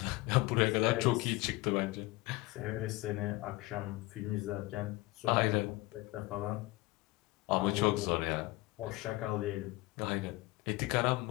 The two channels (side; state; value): right; quieter; 20.8 dB